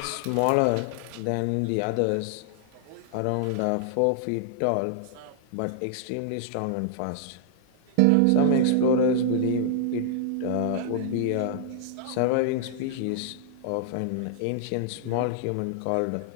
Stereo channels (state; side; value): different; both; correlation -0.01